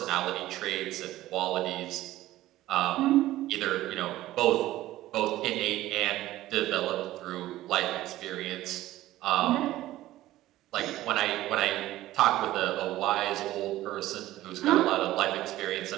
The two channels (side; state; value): left; quieter; 15.4 dB